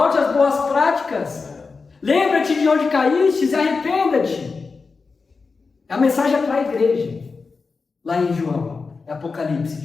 às boas práticas. Lembra-te de onde caíste e arrependa-te. A mensagem é para a igreja. Lá em João, Apocalipse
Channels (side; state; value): right; quieter; 4.5 dB